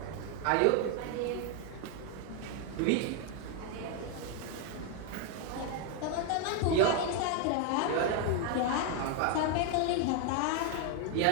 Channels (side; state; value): both; different; correlation 0.00